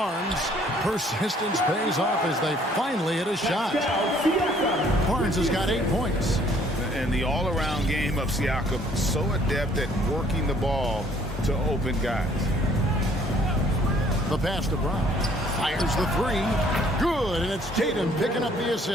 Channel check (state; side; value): normal; both; correlation 0.60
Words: Persistence pays off as they finally hit a shot. Barnes has got 8 points. And the all-around game of Siakam, so adept at working the ball to open guys. The pass to Brown. Fires the three. Good, and it's Tatum picking up the